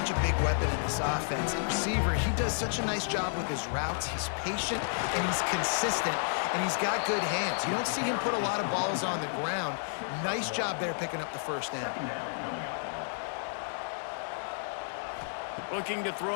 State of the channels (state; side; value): silent; right; digital silence